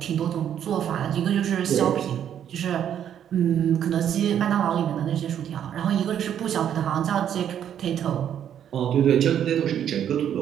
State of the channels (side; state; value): left; quieter; 9.6 dB